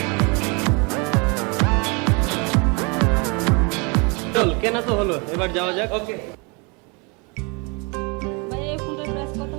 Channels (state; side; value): quieter; left; 31.2 dB